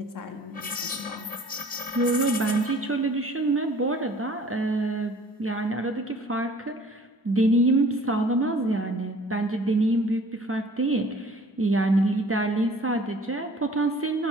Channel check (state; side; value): normal; both; correlation 0.51